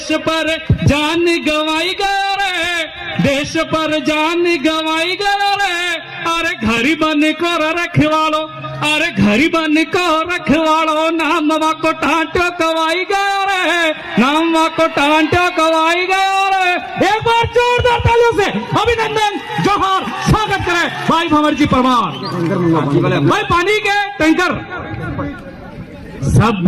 पर जान गवाई गए रहे, देश पर जान गवाई गए रहे। अरे घरी बन को रखवालो, अरे घरी बन को रखवालो, नामवा को ठांटो कवाई गए रहे, नामवा को ठांटो कवाई गए रहे। एक बार जोरदार तालियों से अभिनंदन जोहर स्वागत करें भाई भंवर जी परमार। भाई पानी के टैंकर सब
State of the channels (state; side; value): identical; both; correlation 1.00